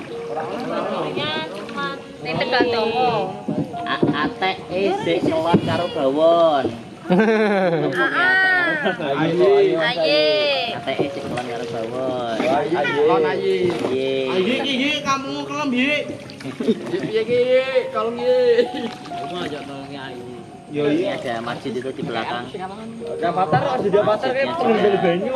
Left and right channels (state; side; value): identical; both; correlation 1.00